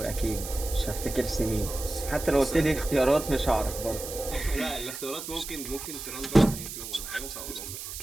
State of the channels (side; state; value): right; noise; hiss, 9 dB below the sound